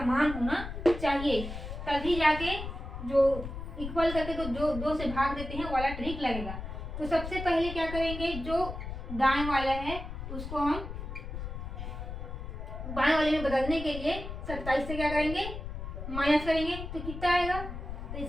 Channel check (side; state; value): left; noise; rumble, 7 dB below the sound